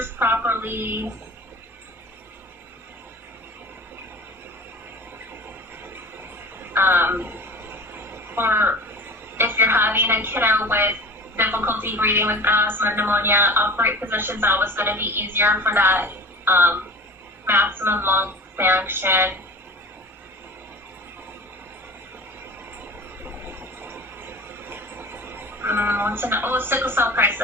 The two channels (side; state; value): both; normal; correlation 0.38